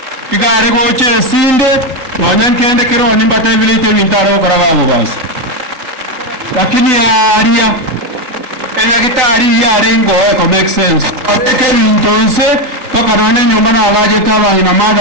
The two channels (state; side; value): late; left; 3.8 ms